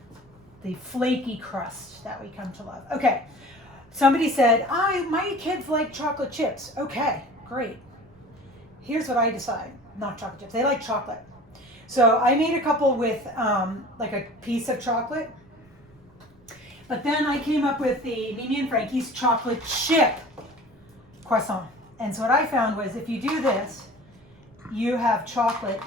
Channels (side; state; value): right; noise; rumble, 29 dB below the sound